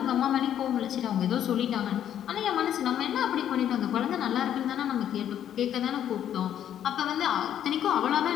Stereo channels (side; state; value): right; quieter; 10.2 dB